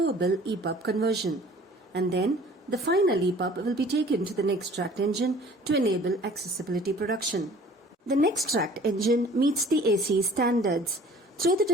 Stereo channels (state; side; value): normal; both; correlation 0.50